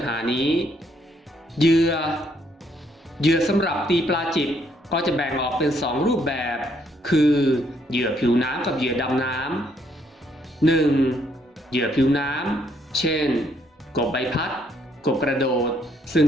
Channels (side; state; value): both; normal; correlation 0.70